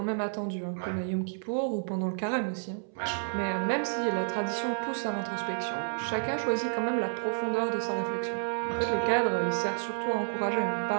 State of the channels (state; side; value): silent; left; 57 dB below the other